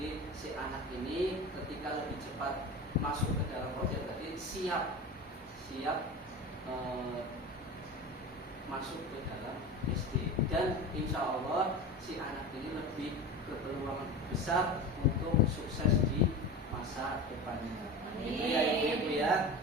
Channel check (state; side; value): normal; both; correlation 0.30